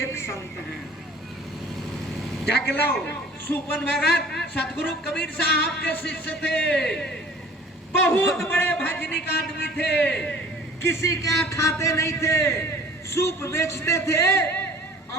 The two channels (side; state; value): both; normal; correlation 0.48